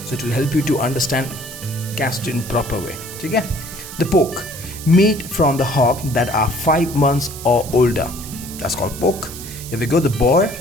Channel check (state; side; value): noise; right; hiss, 12 dB below the sound